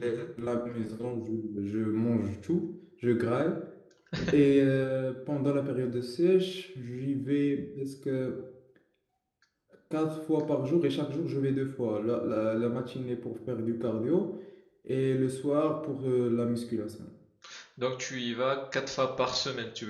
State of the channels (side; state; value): both; identical; correlation 1.00